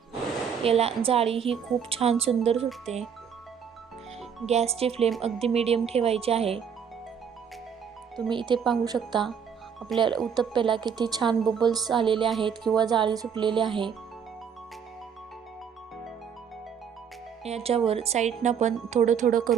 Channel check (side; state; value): left; quieter; 7.3 dB